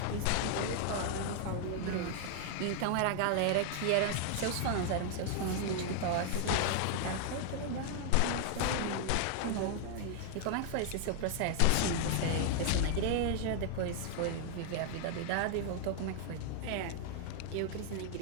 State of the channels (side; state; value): both; different; correlation 0.00